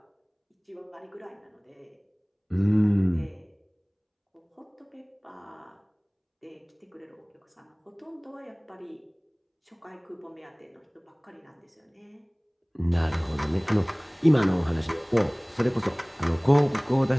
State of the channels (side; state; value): both; identical; correlation 1.00